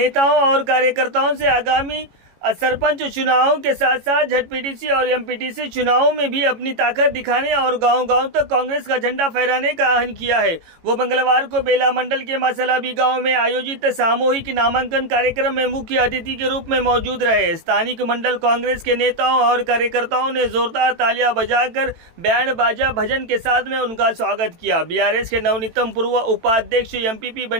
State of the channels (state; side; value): late; left; 18 ms